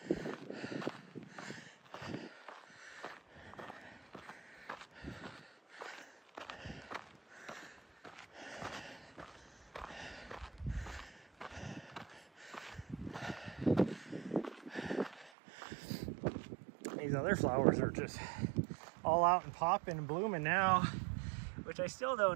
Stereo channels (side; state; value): left; drops out; at 15.3 s